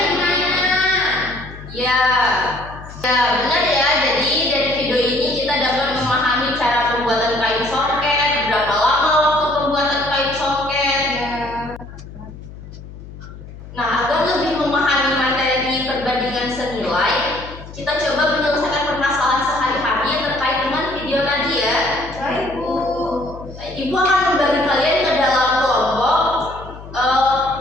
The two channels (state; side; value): noise; left; hum, 15 dB below the sound